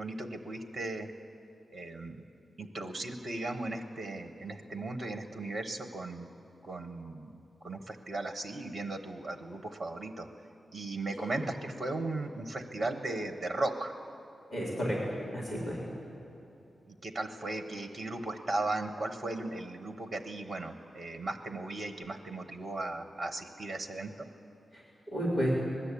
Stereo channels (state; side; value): normal; both; correlation 0.89